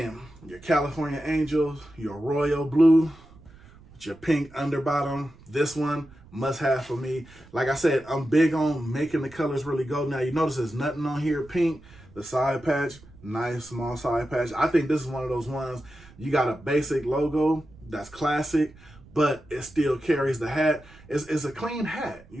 your California Angels, your royal blue, Your pink underbottom. This one, must have for me. Like I said, I'm big on making the colors really go. Now, you notice there's nothing on here pink. The side patch, nice small side patch. I think this is one of those ones, you got a basic logo that's classic, but it still carries the hat. It's a clean hat. You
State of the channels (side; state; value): right; noise; rumble, 23 dB below the sound